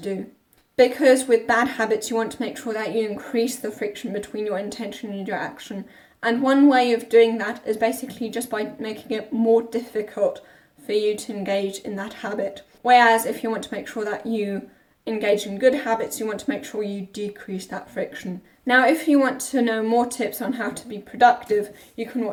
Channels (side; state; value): both; identical; correlation 1.00